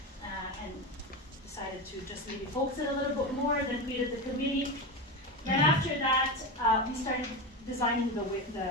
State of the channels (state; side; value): normal; both; correlation 0.19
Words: and decided to just maybe focus it a little bit more, then created the committee. Then after that, we started designing